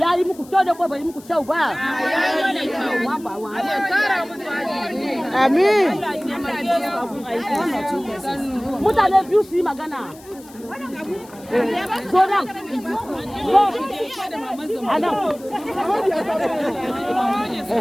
yi muku kyau da ko bai yi muku kyau ba. Amin. Mutane biyu su yi magana. Zo nan. Zo. Anan.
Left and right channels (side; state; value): left; noise; hiss, 23 dB below the sound